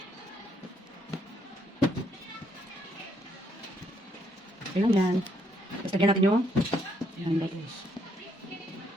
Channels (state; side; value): normal; both; correlation 0.72